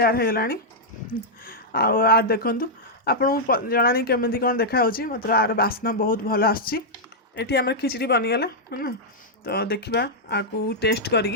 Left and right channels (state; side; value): normal; both; correlation -0.06